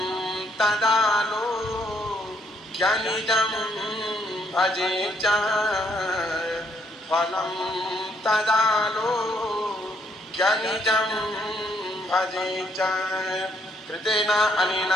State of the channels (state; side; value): normal; both; correlation 0.71